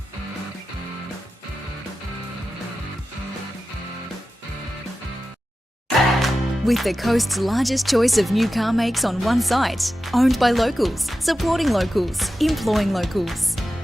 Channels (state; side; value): normal; both; correlation 0.93